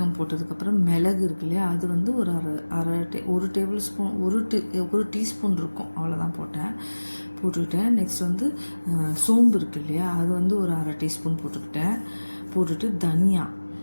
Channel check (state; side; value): inverted; both; correlation -1.00